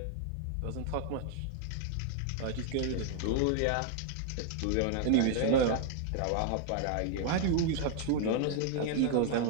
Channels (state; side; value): different; both; correlation 0.00